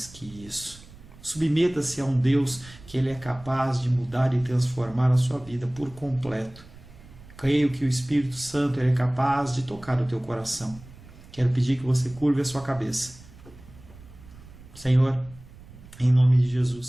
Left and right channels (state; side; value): noise; right; rumble, 20 dB below the sound